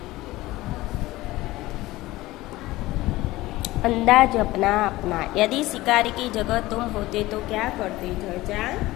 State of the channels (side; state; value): right; quieter; 18.2 dB